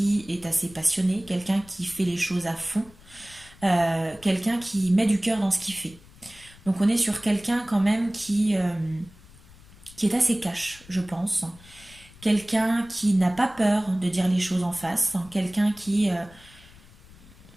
est assez passionné, quelqu'un qui fait les choses à fond, quelqu'un qui met du cœur dans ce qu'il fait. Donc on est sur quelqu'un quand même qui est assez cash, je pense. Quelqu'un qui n'a pas peur de dire les choses en face. Quelqu'un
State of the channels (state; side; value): noise; left; rumble, 23 dB below the sound